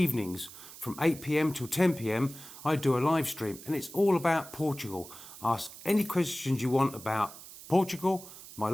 from 8 p.m. till 10 p.m, I do a live stream, and it's all about Portugal. Ask any questions you want about Portugal, my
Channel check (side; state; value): right; noise; hiss, 16 dB below the sound